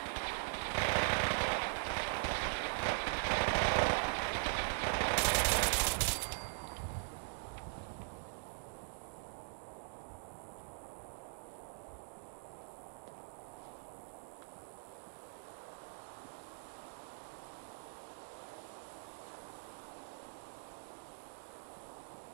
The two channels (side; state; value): left; silent; digital silence